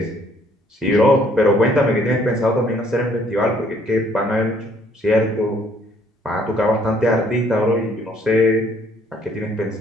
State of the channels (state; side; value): normal; both; correlation 0.63